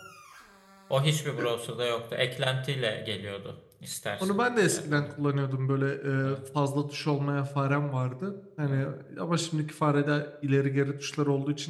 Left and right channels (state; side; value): identical; both; correlation 1.00